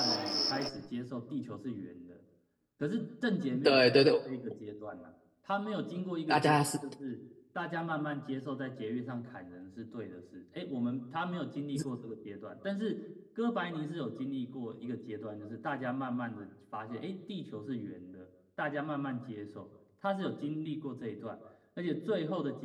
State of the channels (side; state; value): both; identical; correlation 1.00